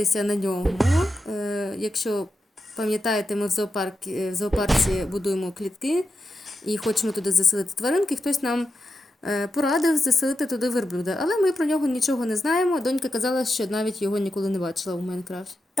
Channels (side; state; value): both; normal; correlation 0.88